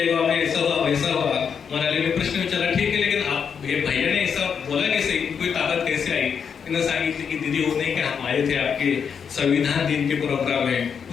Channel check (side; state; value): right; quieter; 6.9 dB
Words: गाव में ऐसा हुआ वैसा हुआ. मोनालीने प्रश्न विचारला, ठीक है लेकिन आप ये भैया ने ऐसा बोला कैसे, कोई ताकत कैसे आई. तिने सांगितलं की दीदी वो नहीं कि हम आए थे आपके संविधान दिन के प्रोग्राम में,